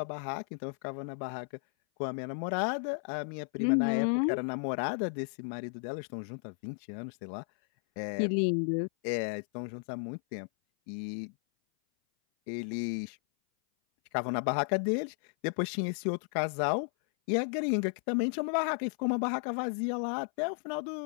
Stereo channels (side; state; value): right; silent; 55 dB below the other